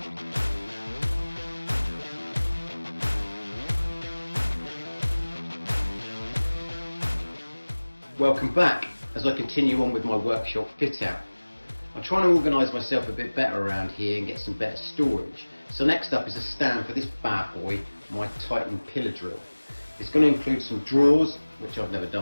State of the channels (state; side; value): inverted; both; correlation -1.00